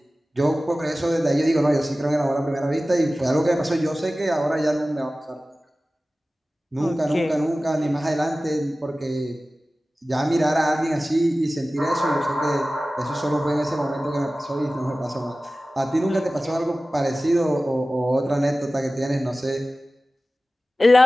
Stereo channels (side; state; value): both; normal; correlation 0.96